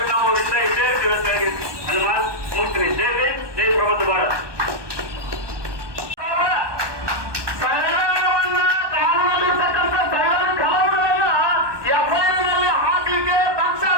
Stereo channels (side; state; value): left; late; 1.2 ms